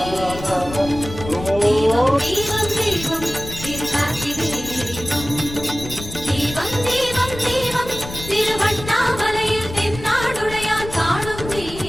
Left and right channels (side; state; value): left; noise; rumble, 11 dB below the sound